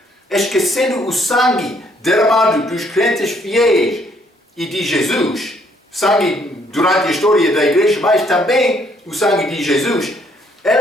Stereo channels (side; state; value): both; normal; correlation 0.67